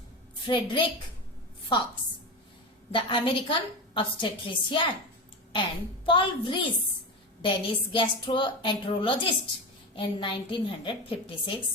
Frederick Fox, the American obstetrician, and Paul Vrees, Danish gastroenterologist, in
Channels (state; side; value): normal; both; correlation 0.22